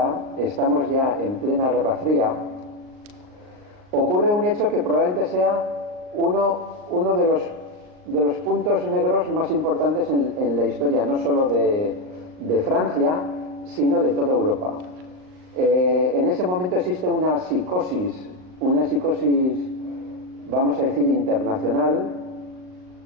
estamos ya en plena Guerra Fría, ocurre un hecho que probablemente sea uno de los puntos negros más importantes en la historia, no solo de Francia, sino de toda Europa. En ese momento existe una psicosis, vamos a decir, internacional.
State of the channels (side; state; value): left; late; 38 ms